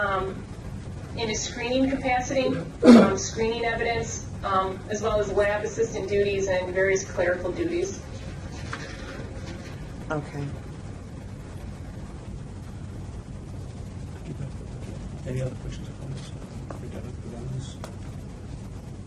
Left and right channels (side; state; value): both; identical; correlation 1.00